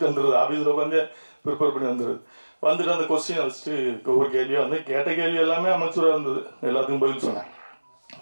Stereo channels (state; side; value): inverted; both; correlation -1.00